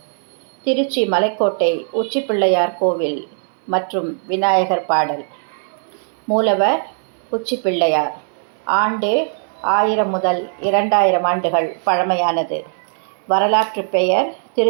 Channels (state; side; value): silent; left; 63 dB below the other